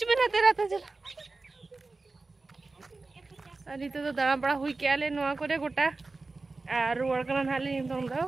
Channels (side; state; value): left; quieter; 3.6 dB